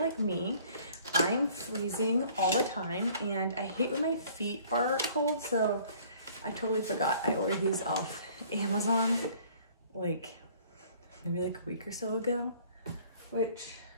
me, I'm freezing all the time and I hate when my feet are cold, so I totally forgot I ordered these off Amazon like maybe like a week or so ago, which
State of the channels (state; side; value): inverted; both; correlation -0.55